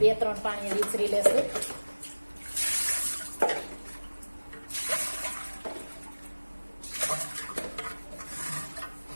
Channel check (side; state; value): both; inverted; correlation -1.00